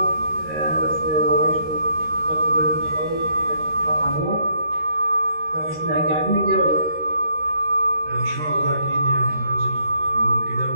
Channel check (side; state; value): left; late; 13 ms